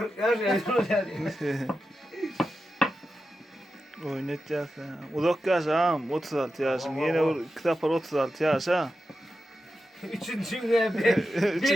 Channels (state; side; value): normal; both; correlation 0.91